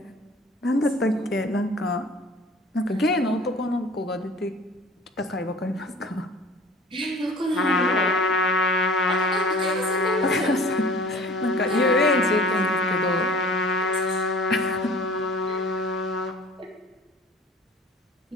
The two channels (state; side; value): normal; both; correlation 0.45